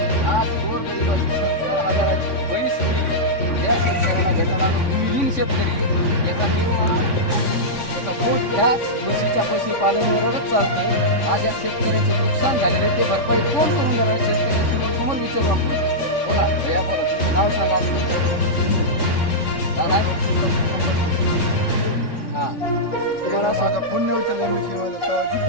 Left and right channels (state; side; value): late; right; 3.6 ms